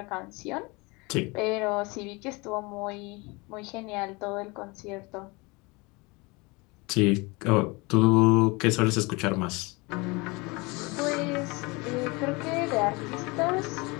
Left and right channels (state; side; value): quieter; right; 26.1 dB